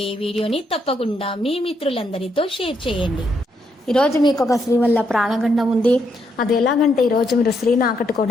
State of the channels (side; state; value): both; normal; correlation 0.77